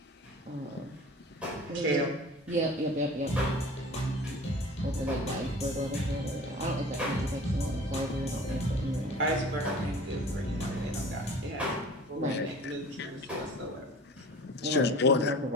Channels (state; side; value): normal; both; correlation 0.42